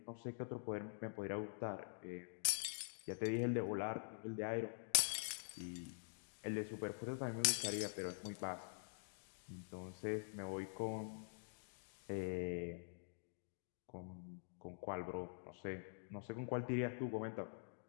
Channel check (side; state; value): right; silent; digital silence